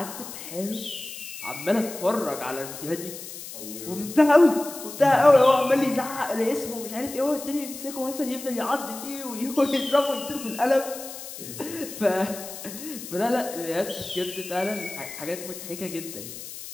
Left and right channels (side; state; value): left; noise; hiss, 11 dB below the sound